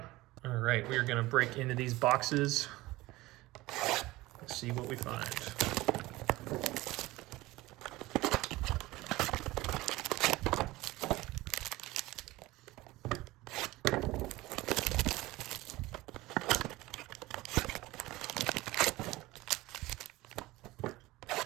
All right, we are gonna break into these boxes. Let's see what we find.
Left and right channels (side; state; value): left; quieter; 19.1 dB